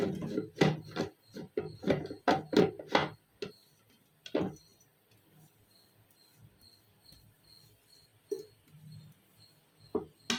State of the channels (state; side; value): identical; both; correlation 1.00